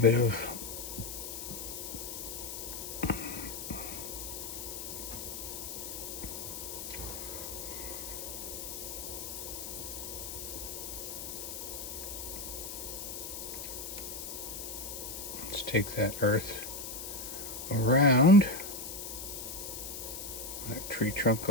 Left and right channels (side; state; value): left; noise; hiss, 7 dB below the sound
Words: of let's take that earth around that tree trunk a